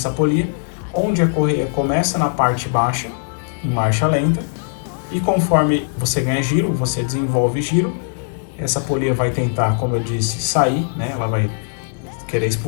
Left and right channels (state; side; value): silent; right; 66 dB below the other